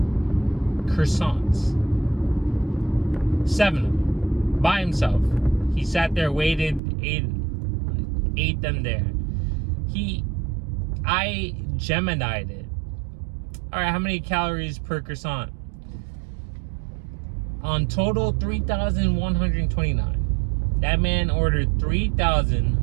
croissants. 7 of them. By himself. He sat there, waited, ate them there. I Gemini'd it. Alright, how many calories per croissant? On total, 3,129. That man ordered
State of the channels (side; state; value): left; drops out; at 6.8 s